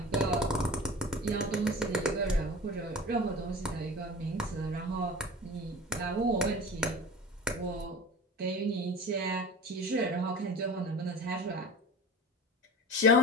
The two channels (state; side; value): normal; both; correlation 0.36